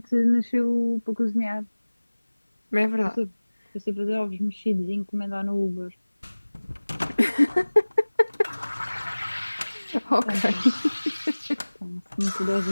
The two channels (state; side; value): inverted; both; correlation -1.00